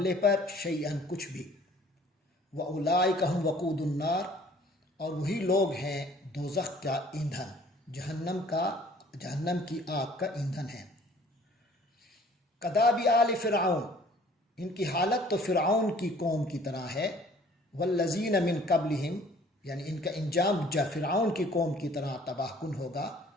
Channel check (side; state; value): both; normal; correlation 0.54